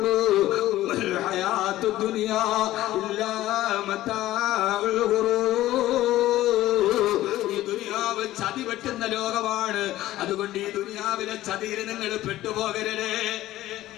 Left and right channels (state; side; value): quieter; right; 15.1 dB